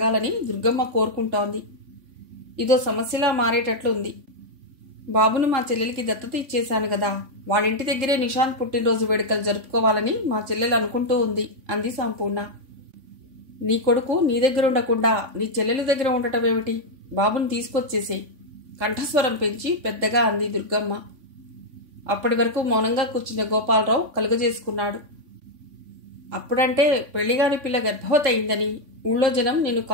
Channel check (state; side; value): late; left; 3.5 ms